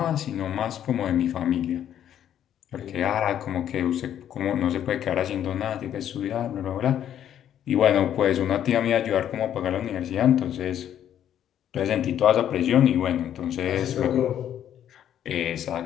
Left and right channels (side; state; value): right; quieter; 10.3 dB